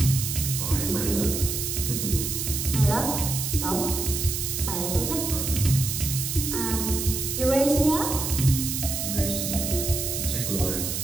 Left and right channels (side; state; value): right; noise; hiss, 2 dB below the sound